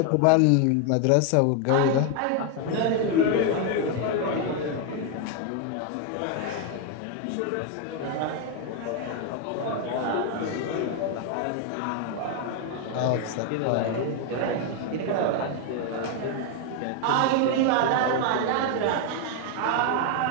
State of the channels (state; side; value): different; both; correlation 0.01